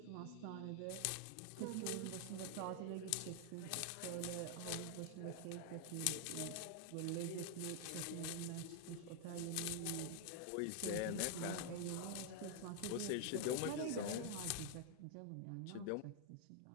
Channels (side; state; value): both; different; correlation 0.00